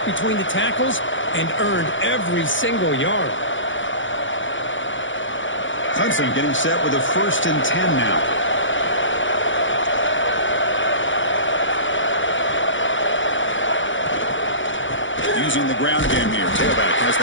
between the tackles and earned every single yard. Clemson getting set with a 1st and 10 now. Using the ground game here. Tailback has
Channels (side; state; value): right; late; 0.56 ms